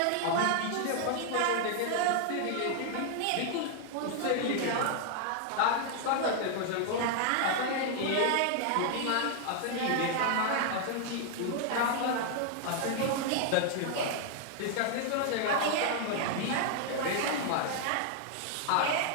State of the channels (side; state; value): both; different; correlation 0.00